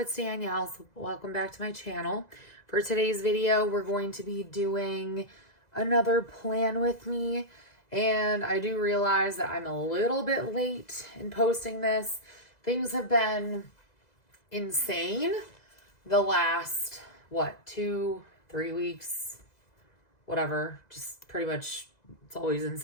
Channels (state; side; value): late; right; 2.0 ms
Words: It's Danielle. So welcome back to my channel. For today's video, we're going to be doing another plan with me. And I do realize that I'm a little bit late in posting this. Things have been insane the last, 2-3 weeks, whatever. Just pretty much, it's always